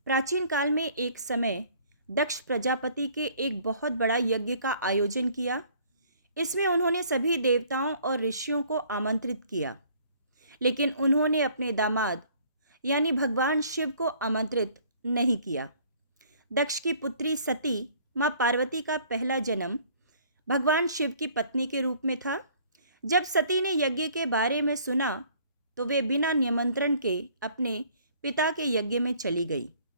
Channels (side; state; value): both; inverted; correlation -0.57